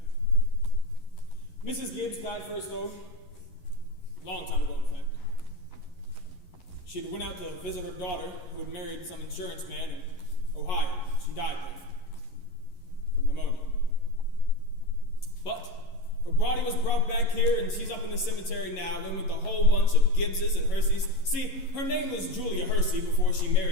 Mrs. Gibbs died first, though, a long time ago, in fact. She had went out to visit her daughter, who had married some insurance man in Ohio. She died there from pneumonia. But her body was brought back here, and she's up in the cemetery now, and with a whole bunch of Gibbses and Herseys. See, her name was Julia Hersey before she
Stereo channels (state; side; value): late; right; 11 ms